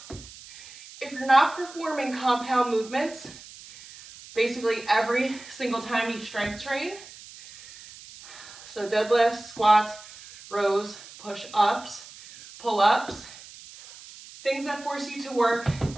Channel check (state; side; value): noise; right; hiss, 18 dB below the sound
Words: if you're not performing compound movements, basically every single time you strength train, so deadlifts, squats, rows, push-ups, pull-ups, things that force you to work